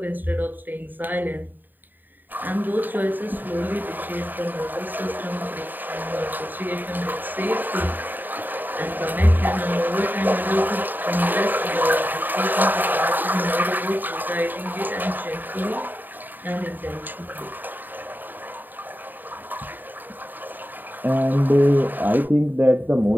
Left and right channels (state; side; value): late; left; 0.090 ms